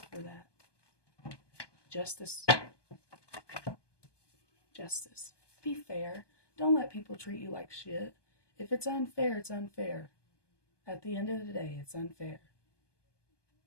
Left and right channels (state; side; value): late; right; 1.2 ms